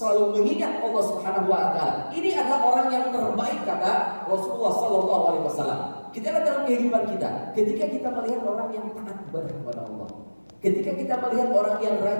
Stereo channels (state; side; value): inverted; both; correlation -1.00